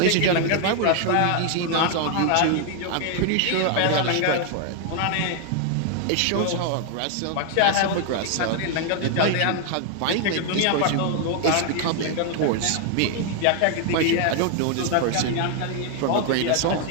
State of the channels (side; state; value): both; different; correlation 0.00